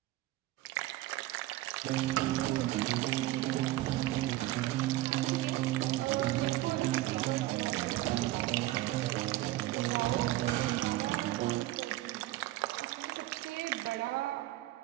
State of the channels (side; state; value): left; quieter; 16.9 dB